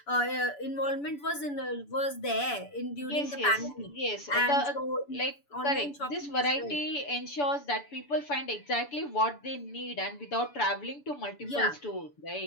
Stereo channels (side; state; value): right; late; 7.0 ms